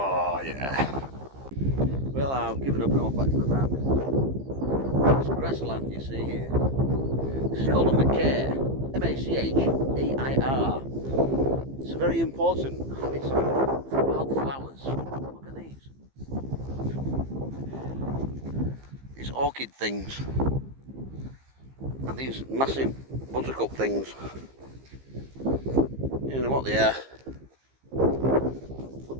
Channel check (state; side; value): late; left; 15 ms